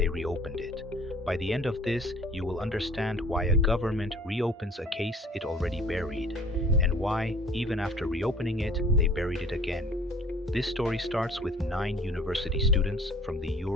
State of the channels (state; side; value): normal; both; correlation 0.51